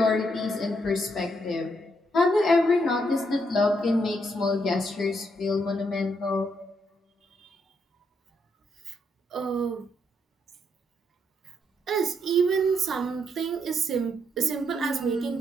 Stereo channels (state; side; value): normal; both; correlation 0.76